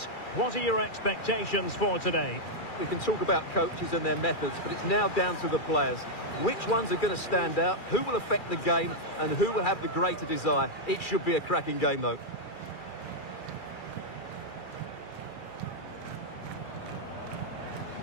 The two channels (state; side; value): late; right; 2.3 ms